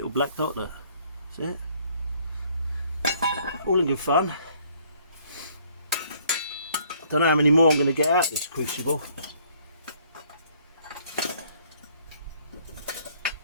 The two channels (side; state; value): both; inverted; correlation -0.62